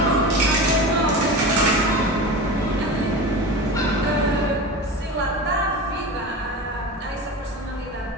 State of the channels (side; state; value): both; normal; correlation 0.29